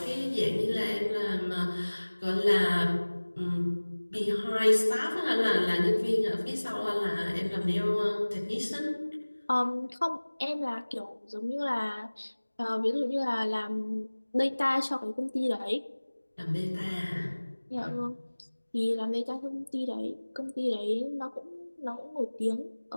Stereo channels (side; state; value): both; inverted; correlation -1.00